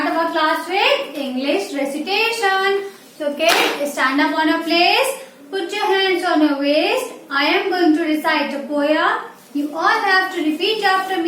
our class with English recitation. So kids, stand up on a place, put your hands on your waist. I am going to recite a poem. You all have to repeat after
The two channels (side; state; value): both; identical; correlation 1.00